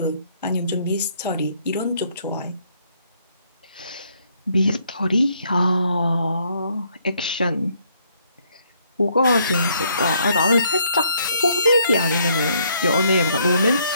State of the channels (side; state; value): both; inverted; correlation -0.69